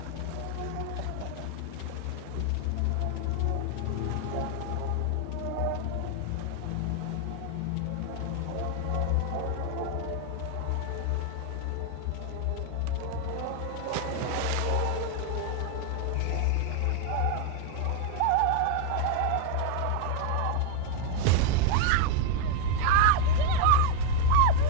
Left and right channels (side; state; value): both; different; correlation 0.00